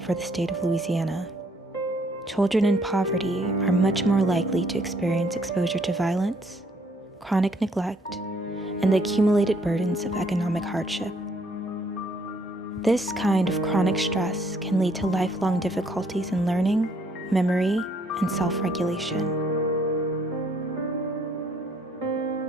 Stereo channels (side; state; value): both; normal; correlation 0.65